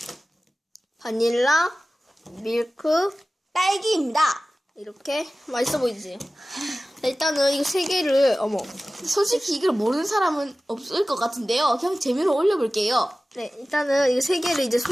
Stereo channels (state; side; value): normal; both; correlation 0.96